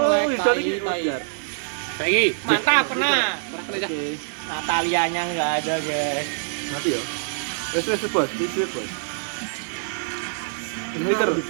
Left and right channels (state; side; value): silent; left; 62 dB below the other